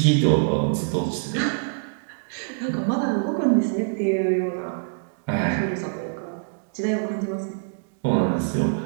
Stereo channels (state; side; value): silent; left; digital silence